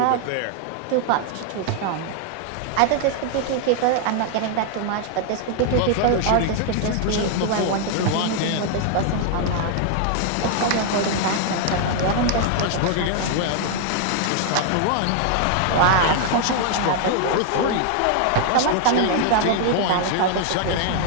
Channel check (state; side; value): different; both; correlation 0.00